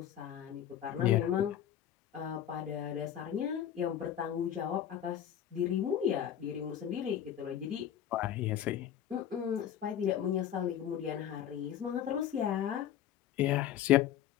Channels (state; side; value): quieter; right; 10.4 dB